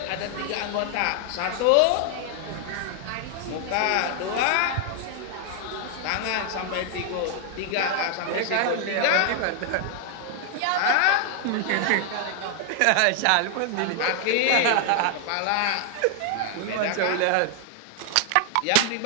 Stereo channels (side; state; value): both; different; correlation 0.00